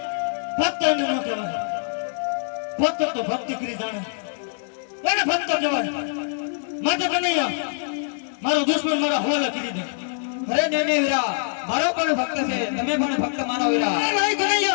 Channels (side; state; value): right; silent; 63 dB below the other